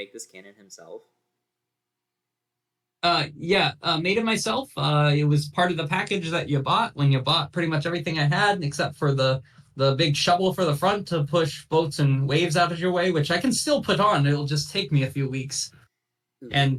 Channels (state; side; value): identical; both; correlation 1.00